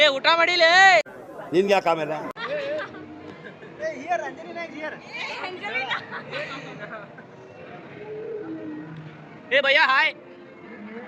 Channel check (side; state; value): both; identical; correlation 1.00